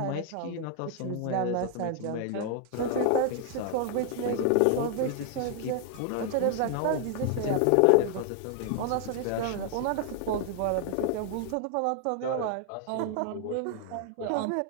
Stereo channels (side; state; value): both; different; correlation 0.00